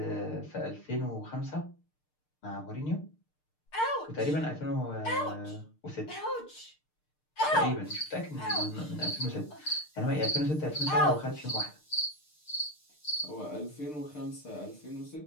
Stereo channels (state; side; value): late; right; 6.6 ms